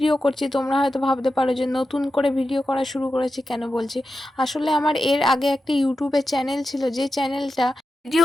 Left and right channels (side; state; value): both; normal; correlation 0.91